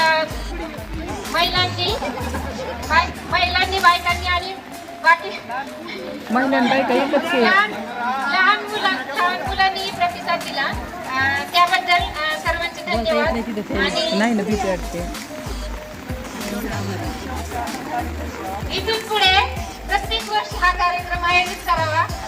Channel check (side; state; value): both; identical; correlation 1.00